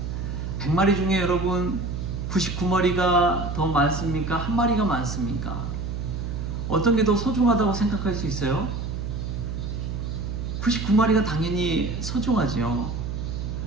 100마리 중에 여러분 99마리가 더 많습니까? 한 마리가 많습니까? 어떤 게 더 소중하다고 생각할 수 있어요? 99마리가 당연히 소중하죠.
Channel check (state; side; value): noise; right; hum, 4 dB below the sound